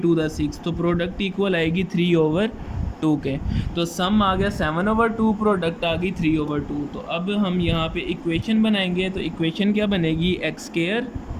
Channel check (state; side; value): identical; both; correlation 1.00